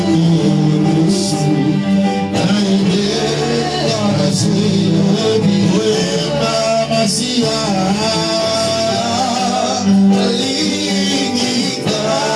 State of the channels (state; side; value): identical; both; correlation 1.00